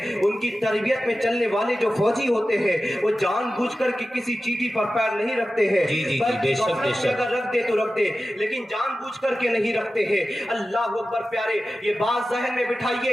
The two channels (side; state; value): both; normal; correlation 0.94